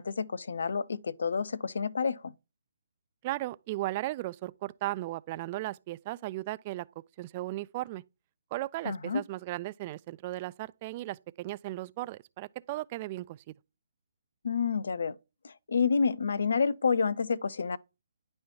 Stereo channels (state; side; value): inverted; both; correlation -0.67